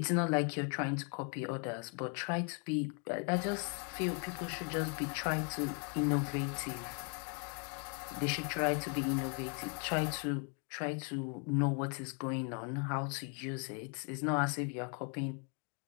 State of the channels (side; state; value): right; quieter; 36.5 dB